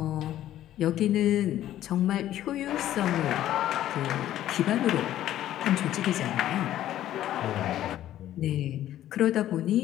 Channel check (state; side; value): quieter; right; 12.7 dB